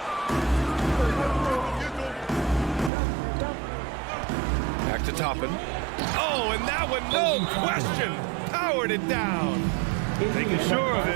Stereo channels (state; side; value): drops out; left; at 2.9 s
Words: Back to Toppin. Oh, and that one, no question. powered it down. Making sure of